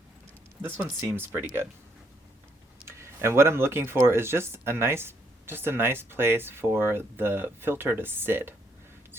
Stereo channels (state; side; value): normal; both; correlation 0.72